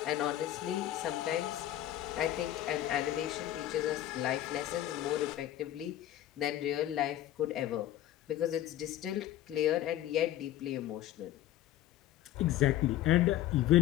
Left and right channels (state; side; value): quieter; right; 13.3 dB